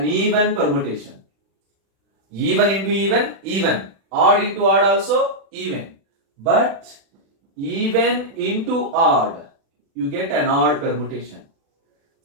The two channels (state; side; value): late; left; 36 ms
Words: even permutation. Even into even, even. Odd into odd also, even. But even into odd, you get an odd permutation.